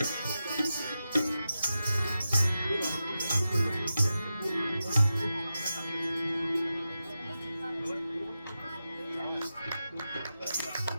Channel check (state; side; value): inverted; both; correlation -0.91